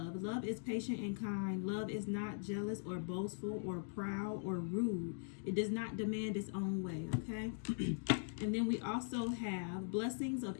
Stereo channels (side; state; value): right; silent; digital silence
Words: Love is patient and kind. Love is not jealous or boastful or proud or rude. It does not demand its own way, okay? And then we also have blessings of